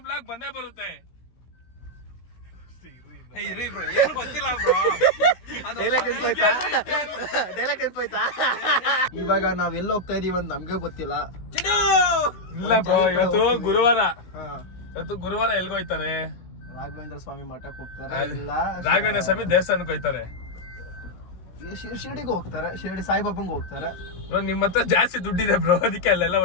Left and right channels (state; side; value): late; right; 16 ms